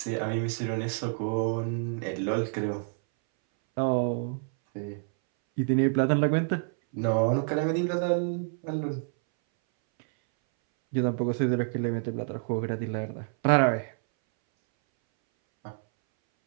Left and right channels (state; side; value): silent; left; 59 dB below the other